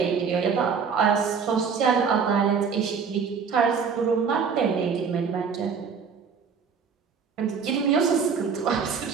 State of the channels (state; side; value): quieter; left; 6.1 dB